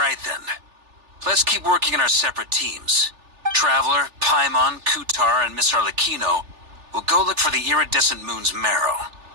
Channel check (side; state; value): left; late; 3.4 ms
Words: then. Let's keep working in our separate teams. Traveler, Paimon, Kutar, and Miss Arlecchino will go look for the iridescent moon's marrow.